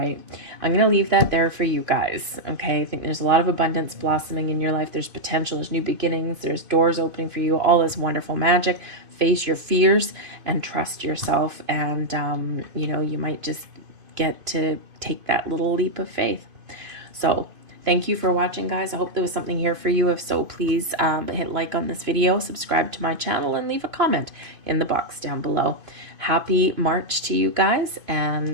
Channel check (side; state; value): left; late; 2.5 ms